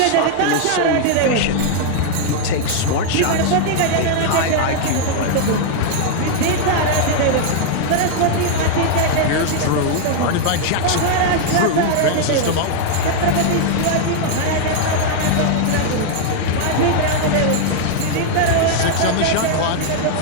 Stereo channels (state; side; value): different; both; correlation 0.00